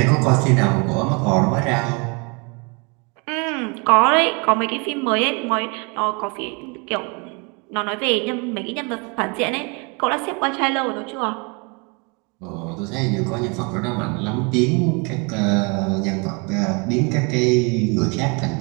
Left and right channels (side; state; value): left; quieter; 31.7 dB